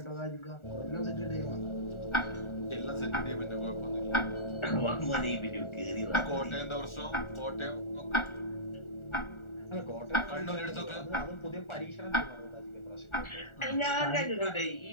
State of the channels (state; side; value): late; right; 1.4 ms